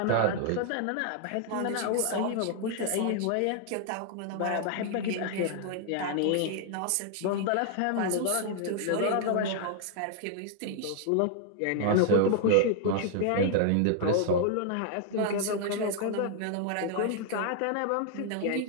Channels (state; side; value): different; both; correlation 0.00